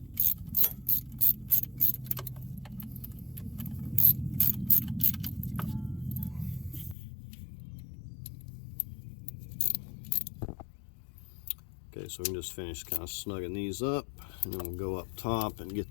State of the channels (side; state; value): right; drops out; at 7.0 s